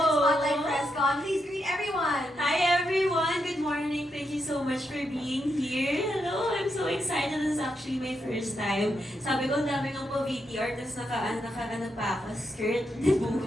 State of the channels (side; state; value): both; normal; correlation 0.82